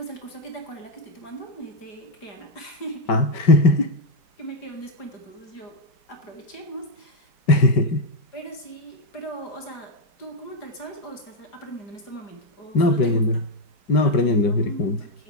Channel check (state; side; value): late; right; 4.9 ms